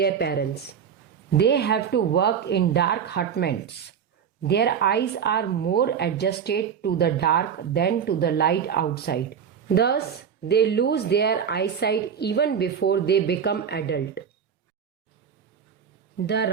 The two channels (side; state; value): left; quieter; 7.6 dB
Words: parents. They have to work in dark hutments. Their eyes are more adjusted to the dark than to the light outside. Thus, they lose their eyesight even before they become adult. The